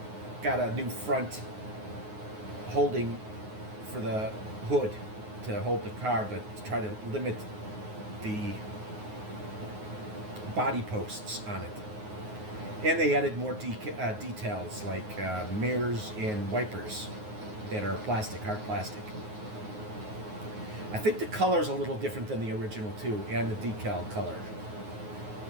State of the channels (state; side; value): late; left; 9.5 ms